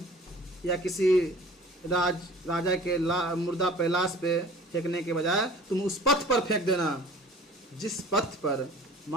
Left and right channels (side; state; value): both; normal; correlation 0.46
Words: या किसी राजा के मुर्दा पे, लाश पे फेंकने के बजाय तुम उस पथ पर फेंक देना जिस पथ पर